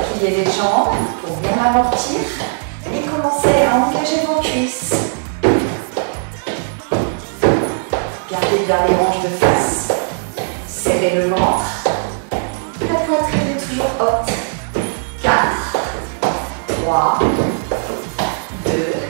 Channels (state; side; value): silent; left; digital silence